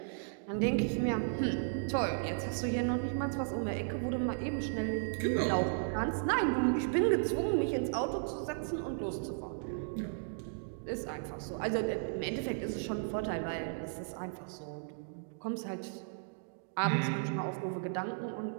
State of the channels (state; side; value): silent; left; digital silence